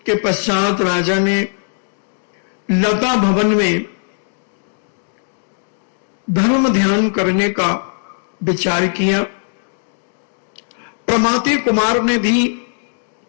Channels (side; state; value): right; silent; digital silence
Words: के पश्चात राजा ने लता भवन में धर्म ध्यान करने का विचार किया। प्रमाति कुमार ने भी